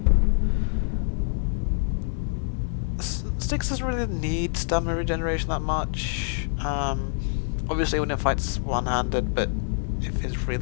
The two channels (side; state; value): right; silent; digital silence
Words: Styx doesn't really need stamina regeneration that much. Obviously when it fights one-handed, but if he